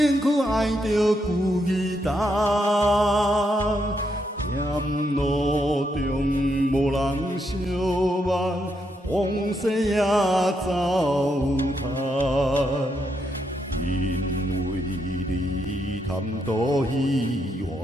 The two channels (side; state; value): both; normal; correlation 0.79